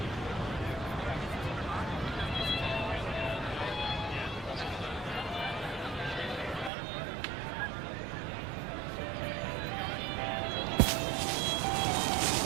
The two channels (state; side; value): drops out; left; at 6.7 s